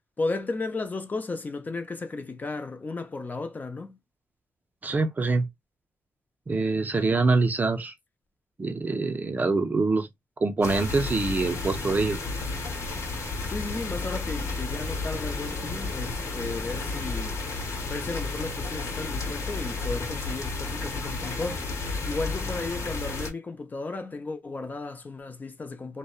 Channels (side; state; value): both; normal; correlation 0.76